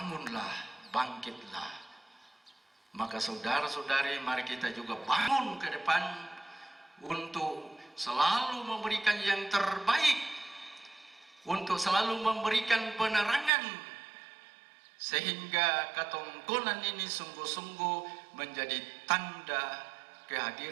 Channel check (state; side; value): drops out; left; at 13.5 s